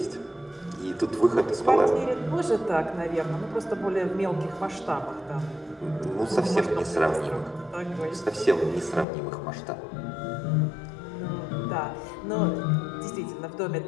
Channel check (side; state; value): right; drops out; at 9.1 s